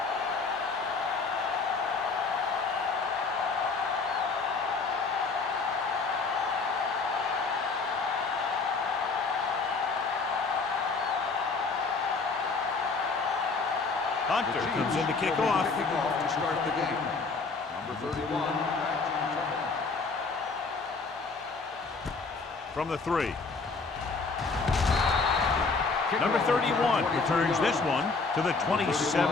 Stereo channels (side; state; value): right; quieter; 4.3 dB